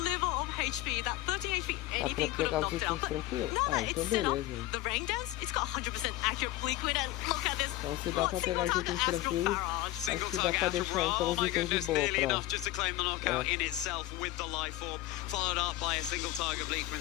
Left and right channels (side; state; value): right; quieter; 16.4 dB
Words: of HP, that 13 HP, anything could have knocked out. But now that it's set up, the Rain Dance, it's got 100% accurate Liquid, and look at this. Então se dá pra pegar os itens tranquilos, acho que dá pra deixar então os itens de boa enough just to claim the knockout in itself with the life orb, followed up by a single target Bleak